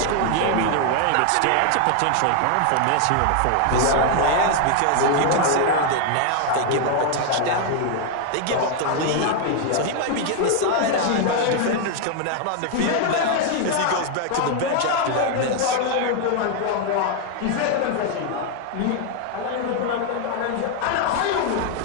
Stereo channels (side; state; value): both; different; correlation 0.00